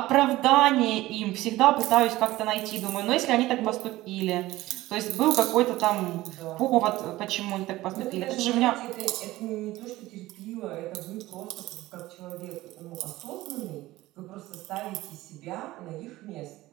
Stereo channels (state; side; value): quieter; left; 17.4 dB